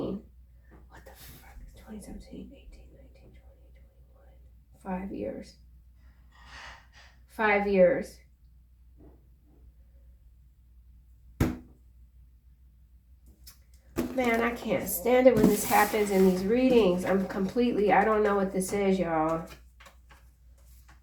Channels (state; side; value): identical; both; correlation 1.00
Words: What the fuck is 2017, 18, 19, 20, 21? 5 years. 5 years. Man, I can't stand it when this happens in these readings. I don't know what this is, y'all.